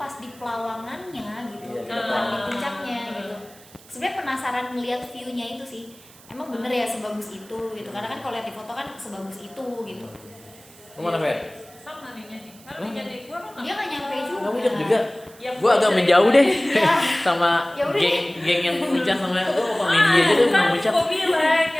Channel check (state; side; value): noise; right; hiss, 23 dB below the sound